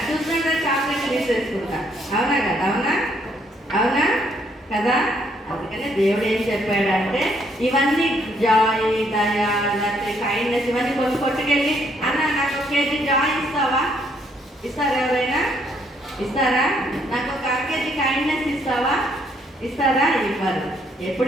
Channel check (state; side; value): normal; both; correlation 0.69